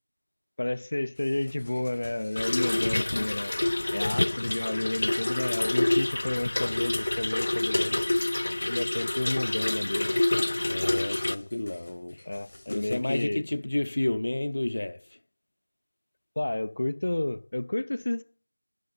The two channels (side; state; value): both; inverted; correlation -1.00